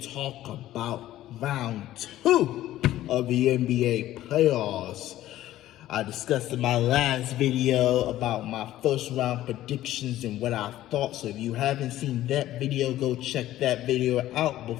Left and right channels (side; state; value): right; quieter; 14.1 dB